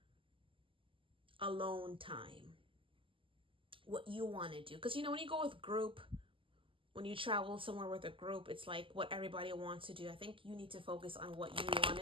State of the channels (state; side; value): late; left; 0.25 ms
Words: alone time. What you want to do. Because, you know, when you go with group, when you travel somewhere with a group, it's like what everybody wants to do. I think you need to focus on what you